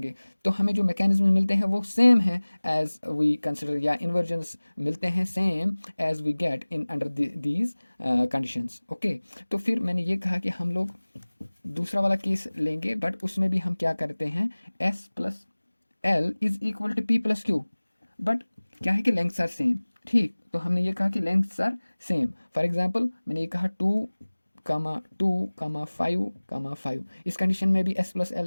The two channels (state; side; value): inverted; both; correlation -1.00